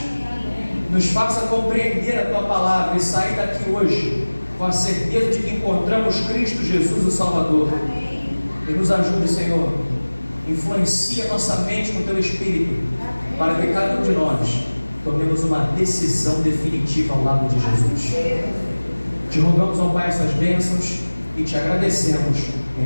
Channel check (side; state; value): both; inverted; correlation -1.00